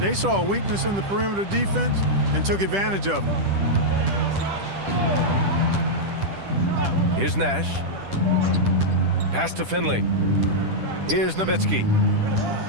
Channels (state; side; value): late; left; 10 ms